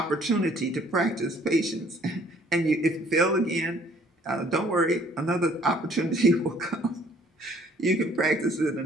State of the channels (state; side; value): normal; both; correlation 0.59